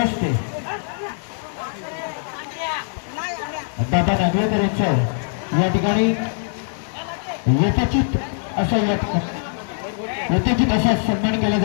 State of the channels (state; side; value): silent; right; digital silence